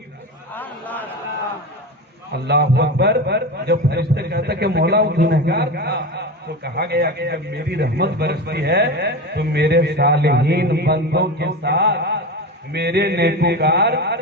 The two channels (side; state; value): both; normal; correlation 0.24